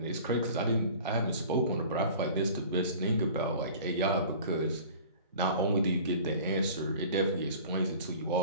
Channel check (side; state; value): both; inverted; correlation -0.43